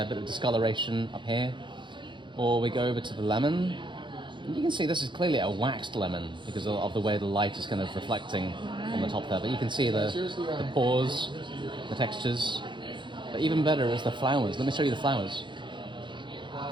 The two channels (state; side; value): late; left; 0.23 ms